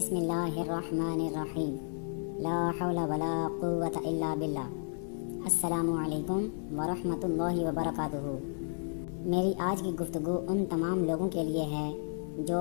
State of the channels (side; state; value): right; silent; digital silence